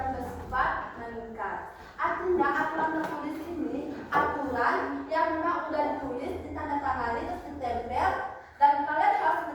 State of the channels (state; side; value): identical; both; correlation 1.00